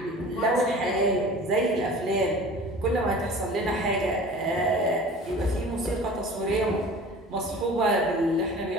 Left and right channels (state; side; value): normal; both; correlation 0.42